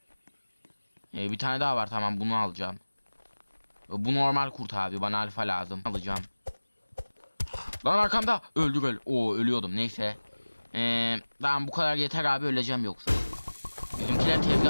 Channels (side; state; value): both; inverted; correlation -1.00